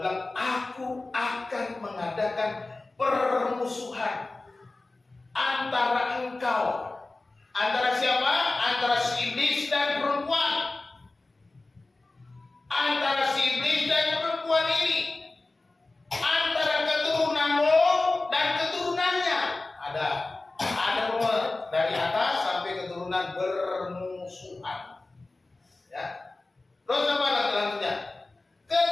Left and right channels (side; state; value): right; quieter; 3.2 dB